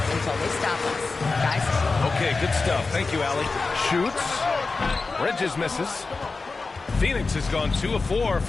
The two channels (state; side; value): quieter; right; 3.9 dB